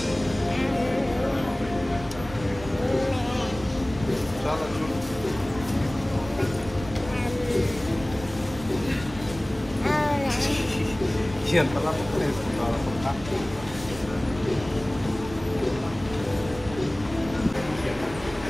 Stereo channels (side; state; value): right; noise; rumble, 14 dB below the sound